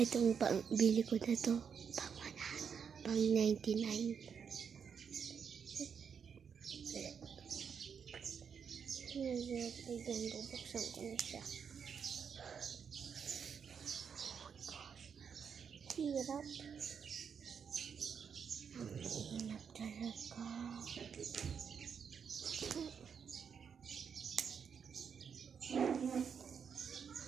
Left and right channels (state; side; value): quieter; left; 6.9 dB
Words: bili ko na to. Pang 99. Ayan, bubuksan ko na siya. Hirap. Ang hirap talaga.